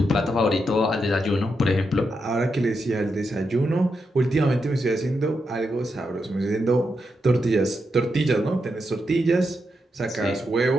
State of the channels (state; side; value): normal; both; correlation 0.84